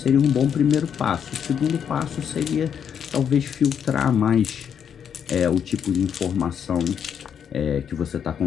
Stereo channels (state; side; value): quieter; right; 8.0 dB